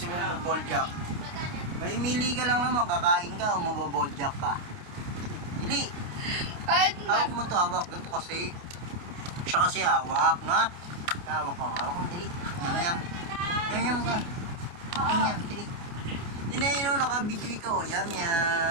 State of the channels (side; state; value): left; late; 29 ms